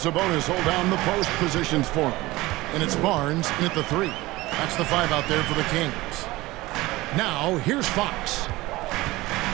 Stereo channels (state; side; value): quieter; left; 19.5 dB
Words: hold down the post positions for him. And it's Barnes in at the 3. That's the 5 out there for the Kings. Now, here's Fox